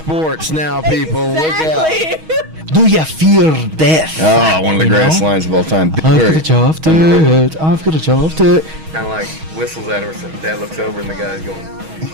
now, people. Exactly. Look out. Do you fear death? Oh, one of the greatest lines of all time. I've got a job to it. I've got a job to it. Kind of like whistles at her, so Dad looks over and the guy's going.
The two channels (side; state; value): left; late; 6.3 ms